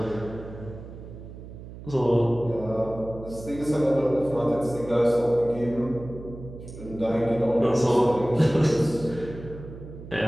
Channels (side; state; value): right; noise; hum, 14 dB below the sound